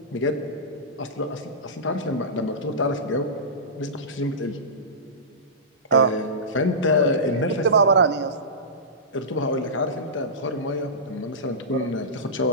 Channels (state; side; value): normal; both; correlation -0.18